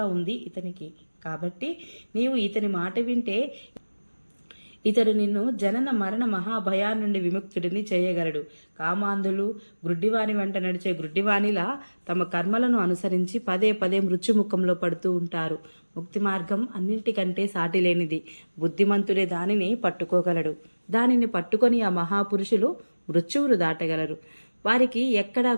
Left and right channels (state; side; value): inverted; both; correlation -1.00